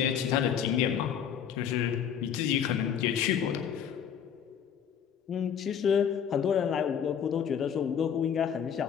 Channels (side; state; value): right; quieter; 8.2 dB